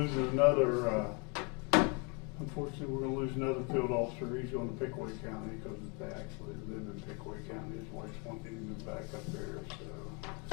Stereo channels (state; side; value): quieter; right; 30.9 dB